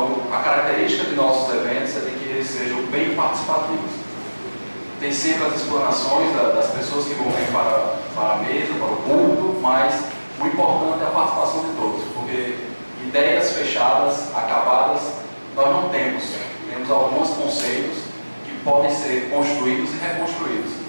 a característica de nossos eventos é de que eles sejam bem participativos. Tem sempre as explanações das pessoas que vão vir para a mesa, para o público, mas o importante é a participação de todos, porque ideias fechadas, acabadas, nós não temos. Temos alguns conceitos que podem ser construídos e reconstruídos.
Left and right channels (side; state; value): both; inverted; correlation -1.00